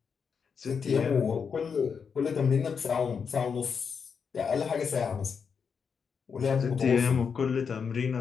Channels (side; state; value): right; quieter; 6.2 dB